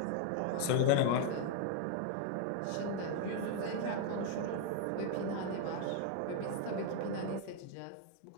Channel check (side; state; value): both; different; correlation 0.00